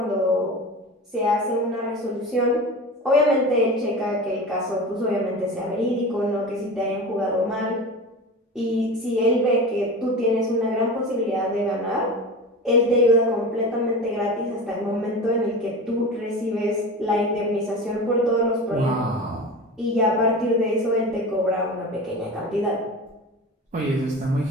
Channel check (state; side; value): normal; both; correlation 0.30